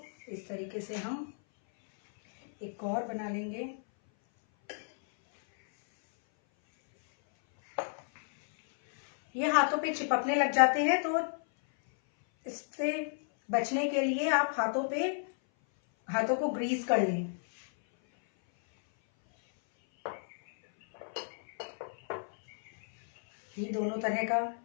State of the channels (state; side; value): silent; right; 57 dB below the other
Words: इस तरीके से हम एक और बना लेंगे। ये हाथों पे चिपकने लग जाते हैं, तो इससे बचने के लिए आप हाथों को ग्रीस कर लें। ये दोनों तरह का